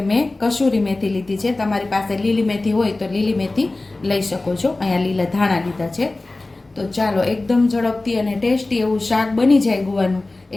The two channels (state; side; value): quieter; right; 3.0 dB